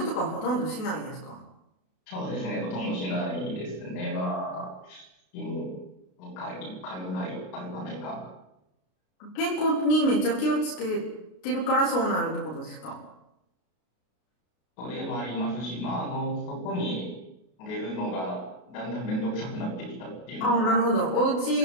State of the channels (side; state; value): right; late; 33 ms